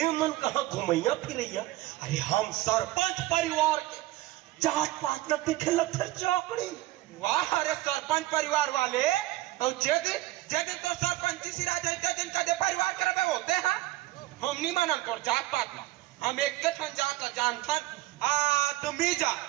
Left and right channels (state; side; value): quieter; left; 17.2 dB